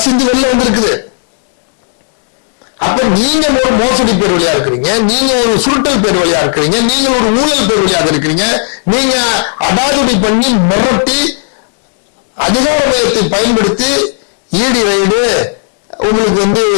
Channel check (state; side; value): silent; right; 71 dB below the other